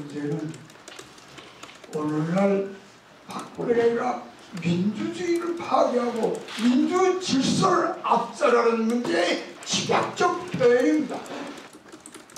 오늘날 박근혜가 민주주의를 파괴하고 민주 질서를 압살하는 문제의 집약적 표현입니다.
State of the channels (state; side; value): identical; both; correlation 1.00